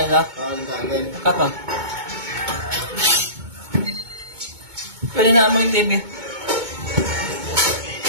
lang ito. Tandaan. Kat o. Pwede na mo yung TV.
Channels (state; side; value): late; left; 2.2 ms